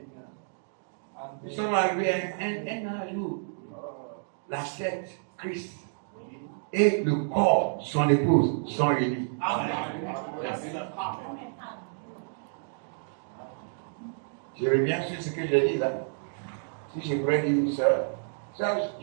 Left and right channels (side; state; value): left; silent; digital silence